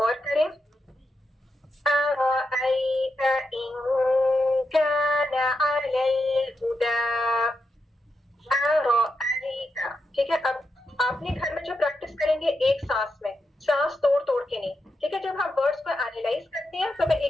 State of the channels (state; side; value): normal; both; correlation 0.85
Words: غور کریں. أرأيت إن كان على الهدى أرأيت. ٹھیک ہے, اب آپ نے گھر میں جو پریکٹس کریں گے ایک سانس میں, سانس توڑ توڑ کے نہیں. ٹھیک ہے, جب ہم ورڈز کو اینالائز کرتے ہیں تو میں